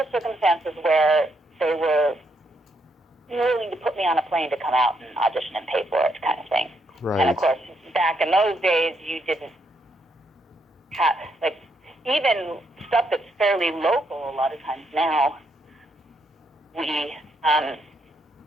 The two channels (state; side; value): normal; both; correlation 0.76